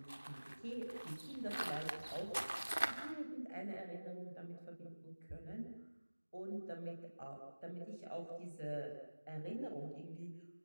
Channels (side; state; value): both; inverted; correlation -1.00